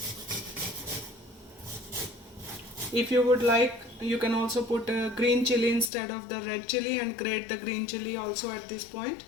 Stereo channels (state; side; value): drops out; right; at 5.9 s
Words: If you would like, you can also put green chili instead of the red chili and grate the green chili also at this point,